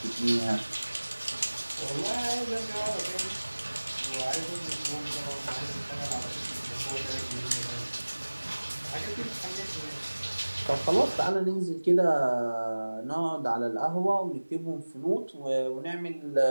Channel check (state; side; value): inverted; both; correlation -1.00